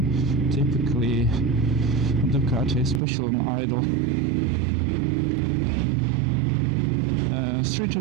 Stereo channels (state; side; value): drops out; left; at 3.0 s